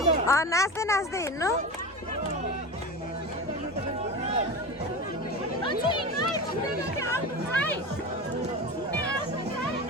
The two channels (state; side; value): normal; both; correlation 0.27